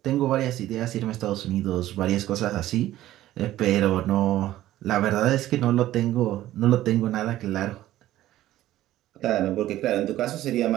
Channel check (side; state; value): left; quieter; 14.3 dB